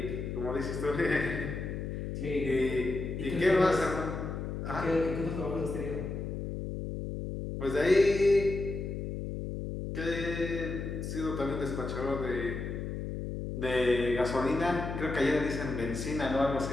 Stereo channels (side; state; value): left; noise; hum, 5 dB below the sound